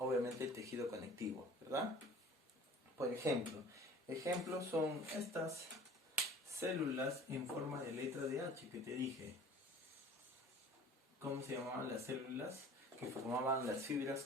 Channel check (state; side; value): normal; both; correlation 0.47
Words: el tejido conectivo, ¿verdad? Por ejemplo, ejemplos son estas células en forma de letra de H que te dije. ¿Cómo se llamaban las células que formaban las